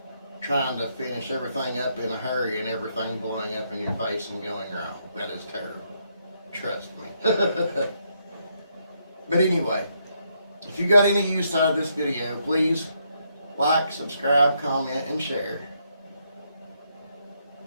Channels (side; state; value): both; inverted; correlation -0.76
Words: trying to finish everything up in a hurry and everything blowing up in your face and going wrong. That is terrible. Trust me. But anyway, if you got any use out of this video, please like, subscribe, comment, and share.